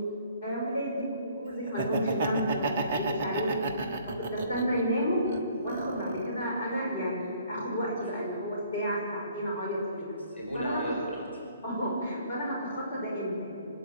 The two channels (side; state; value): both; inverted; correlation -0.59